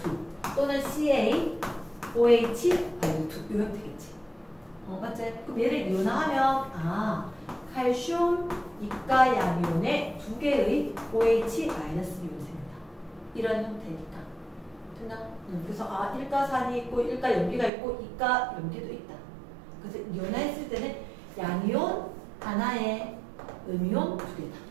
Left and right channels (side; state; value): left; drops out; at 17.7 s